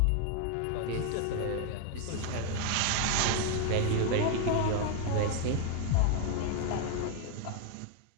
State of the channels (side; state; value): both; different; correlation 0.01